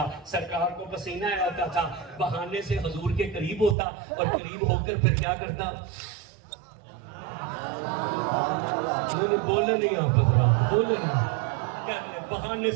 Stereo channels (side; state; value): left; drops out; at 3.8 s